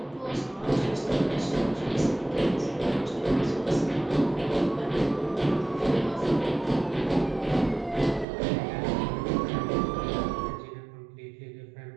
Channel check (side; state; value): left; drops out; at 8.2 s